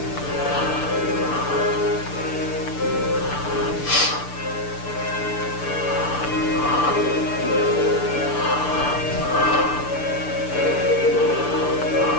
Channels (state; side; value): late; right; 6.8 ms